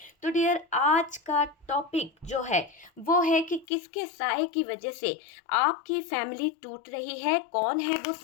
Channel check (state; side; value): drops out; right; at 3.7 s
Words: तो डियर, आज का टॉपिक जो है वो है कि किसके साए की वजह से आपकी फैमिली टूट रही है। कौन है वो